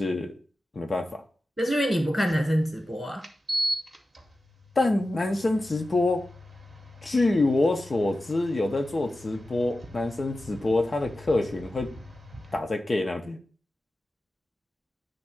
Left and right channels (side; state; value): both; normal; correlation 0.93